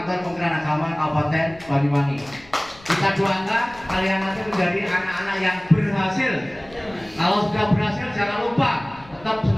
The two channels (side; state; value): left; noise; rumble, 23 dB below the sound